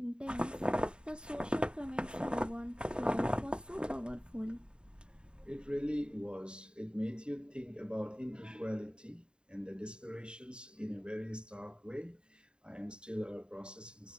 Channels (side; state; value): left; late; 0.050 ms